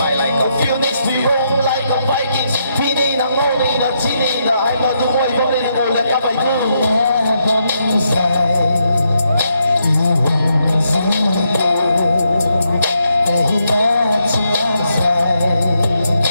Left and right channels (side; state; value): both; inverted; correlation -0.79